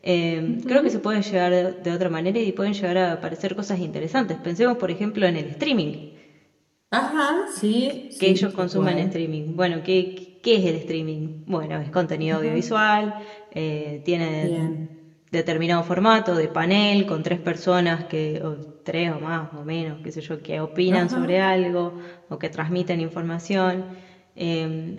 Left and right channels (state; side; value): identical; both; correlation 1.00